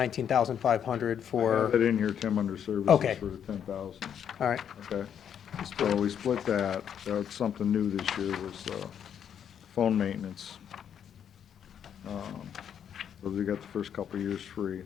I for, have it in here, Tim, under services Okay. for the 10,000, all right, okay? So we split that. That's something new this year, was phone maintenance. So we got the first couple of years free.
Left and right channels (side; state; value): right; quieter; 8.7 dB